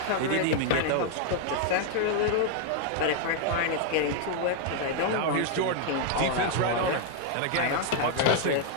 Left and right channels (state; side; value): different; both; correlation 0.00